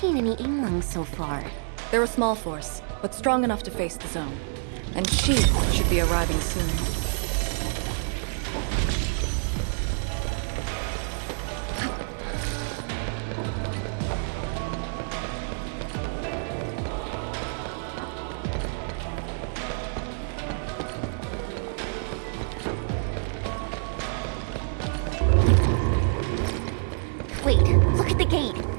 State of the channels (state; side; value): silent; left; digital silence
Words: any Yinglong so far. They're a small force, but strong enough to face the zone. And she should be arriving soon. Wait, look at the gate.